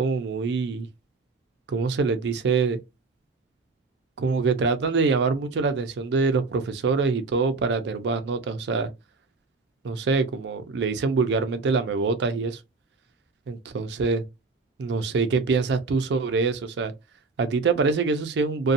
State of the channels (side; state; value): left; quieter; 4.0 dB